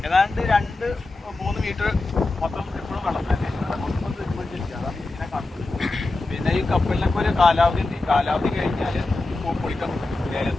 ഏതാണ്ട് 2-3 മീറ്റർ മൊത്തം എപ്പോഴും വെള്ളം തന്നെ മൊത്തം തിരുമ്പിച്ചിരിക്കുകയാണ്. ഇങ്ങനെ കാണുന്നത്. പിന്നെ ഈ കപ്പലിനൊക്കെ ഒരു കാലാവധി ഉണ്ട്. കാലാവധി കഴിഞ്ഞാൽ പൊളിക്കാൻ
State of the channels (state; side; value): quieter; right; 3.1 dB